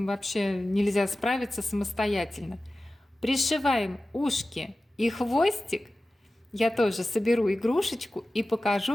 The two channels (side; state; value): both; normal; correlation 0.95